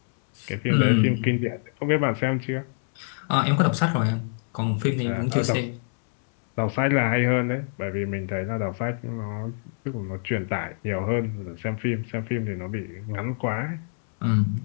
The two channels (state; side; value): silent; right; digital silence